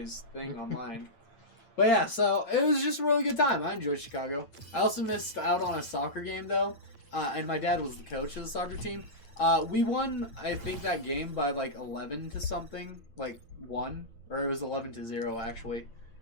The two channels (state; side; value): late; right; 8.8 ms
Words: thing online. But yeah, so it was just a really good time. I enjoyed Chicago. I also missed out on a soccer game, though. And my dad was the coach of the soccer team. We won, I think, that game by like 11 to something. Like 1. Or it was 11 to 0, actually.